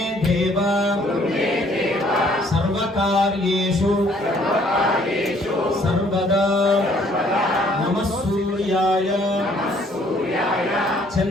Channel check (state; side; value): normal; both; correlation 0.62